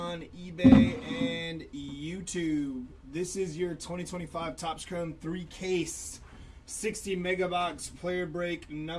eBay and YouTube. This is your 2025 Topps Chrome 3-case 60 MegaBox player break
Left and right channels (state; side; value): identical; both; correlation 1.00